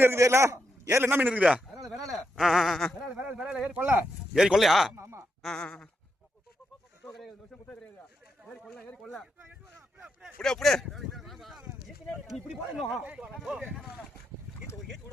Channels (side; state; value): both; normal; correlation 0.83